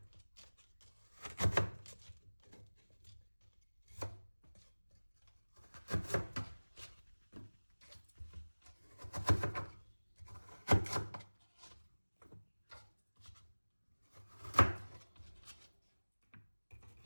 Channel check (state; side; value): inverted; both; correlation -1.00